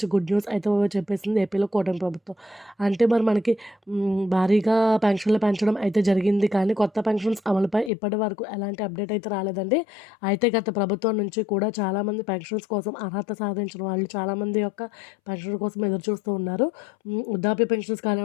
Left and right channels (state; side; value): drops out; right; at 7.9 s